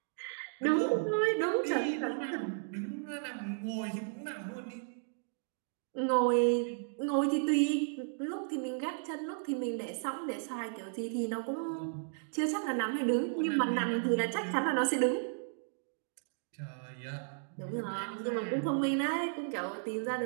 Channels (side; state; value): left; silent; digital silence